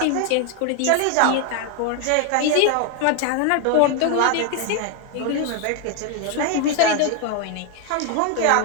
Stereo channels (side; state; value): both; different; correlation 0.01